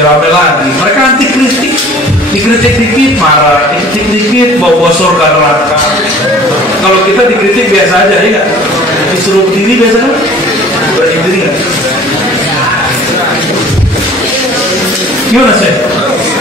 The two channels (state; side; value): normal; both; correlation 0.48